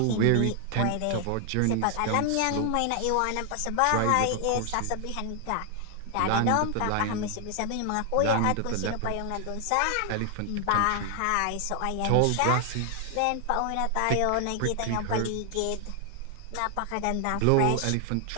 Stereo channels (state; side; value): different; both; correlation 0.00